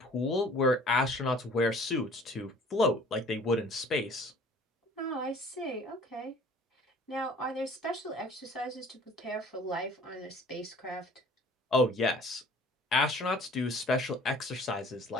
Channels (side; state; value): both; normal; correlation 0.51